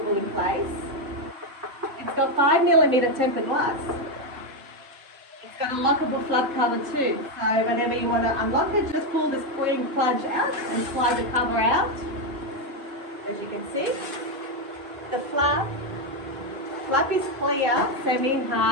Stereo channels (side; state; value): left; late; 4.1 ms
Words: in place. It's got 5mm tempered glass. It's got a lockable flap cover too, so whenever you want to unlock it, just pull the spring plunge out and slide the cover out. As you can see, the flap is clear,